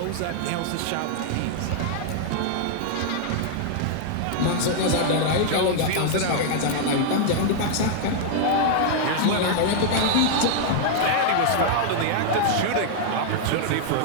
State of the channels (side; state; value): both; different; correlation -0.01